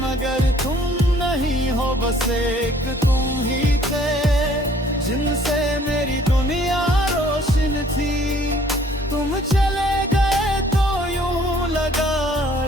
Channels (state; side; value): normal; both; correlation 0.58